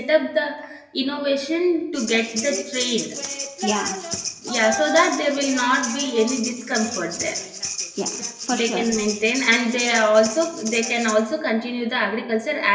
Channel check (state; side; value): identical; both; correlation 1.00